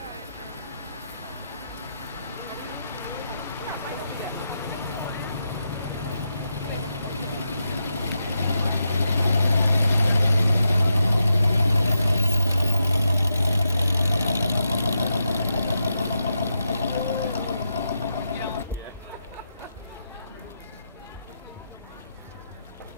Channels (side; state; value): both; inverted; correlation -0.85